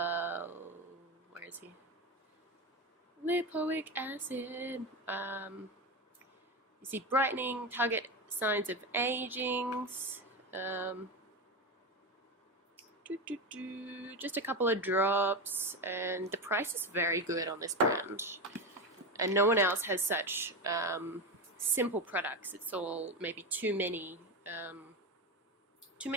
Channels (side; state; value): both; normal; correlation 0.17